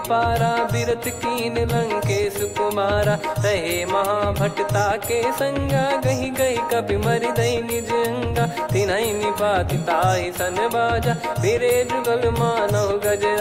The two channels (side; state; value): both; identical; correlation 1.00